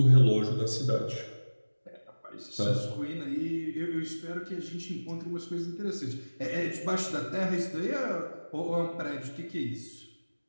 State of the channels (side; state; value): both; inverted; correlation -1.00